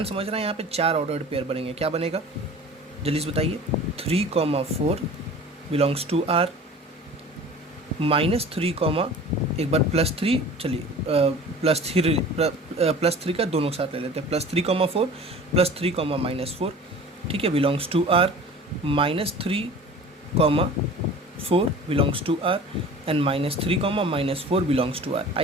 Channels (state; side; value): normal; both; correlation 0.42